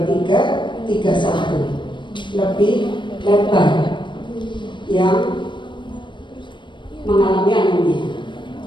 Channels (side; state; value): right; late; 0.23 ms